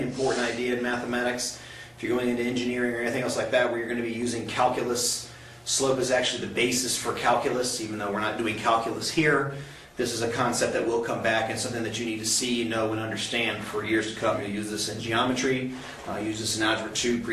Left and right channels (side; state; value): both; identical; correlation 1.00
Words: important idea in mathematics. If you're going into engineering or anything else like that where you're going to be using calculus, slope is actually the basis for calculus, even though we're not doing calculus here. This is a concept that will come back and something that you need to see, know, and understand for years to come. You'll use this in geometry, use this in Algebra 2,